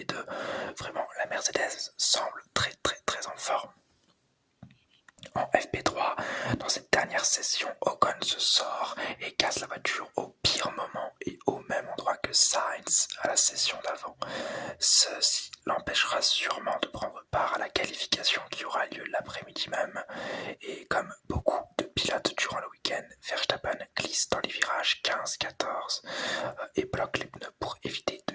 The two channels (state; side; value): identical; both; correlation 1.00